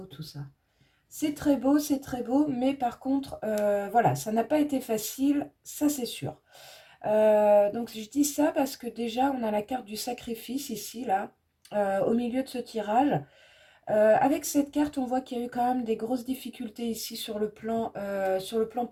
tout ça. C'est très beau, mais par contre, voilà, ça n'a pas été facile, ça c'est sûr. Donc je dis ça parce que déjà, on a la carte du sacrifice ici, là, au milieu de ce tirage. Avec cette carte, on voit qu'il y a eu quand même des grosses difficultés ici sur le plan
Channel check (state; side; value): identical; both; correlation 1.00